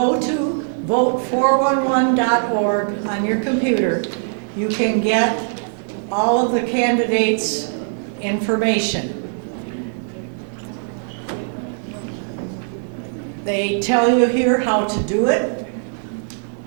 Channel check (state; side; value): silent; left; 65 dB below the other